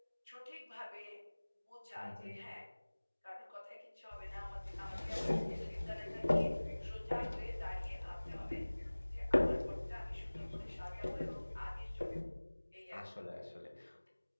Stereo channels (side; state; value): both; inverted; correlation -1.00